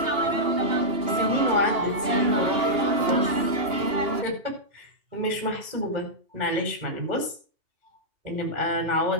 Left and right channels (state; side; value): late; left; 2.8 ms